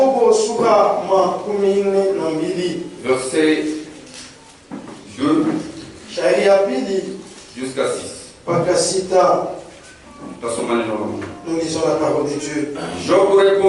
sura makumi na mbili. Verset 2 Shairi ya pili jusqu'à 6. mpaka sita. Tutasoma neno la Mungu. Nous lisons la parole de Dieu. Job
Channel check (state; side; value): identical; both; correlation 1.00